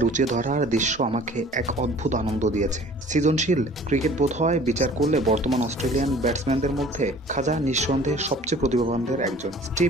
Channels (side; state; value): both; normal; correlation 0.49